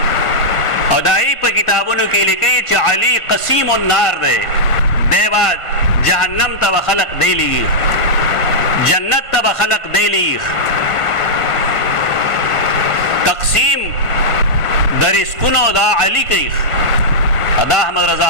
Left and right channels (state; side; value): late; right; 1.7 ms